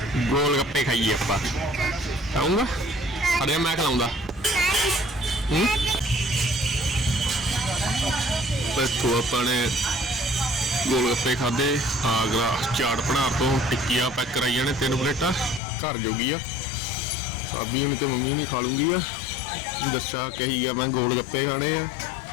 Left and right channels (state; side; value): drops out; right; at 15.6 s